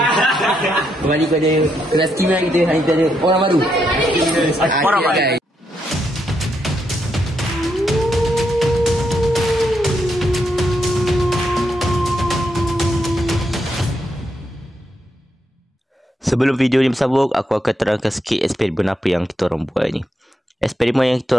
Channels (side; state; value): both; normal; correlation 0.80